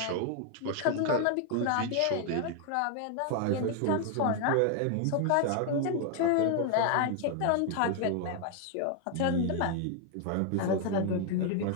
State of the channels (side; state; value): both; different; correlation 0.00